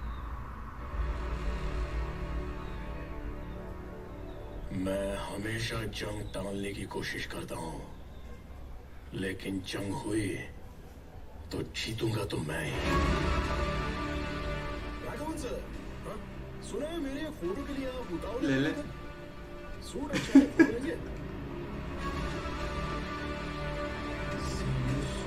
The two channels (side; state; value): both; identical; correlation 1.00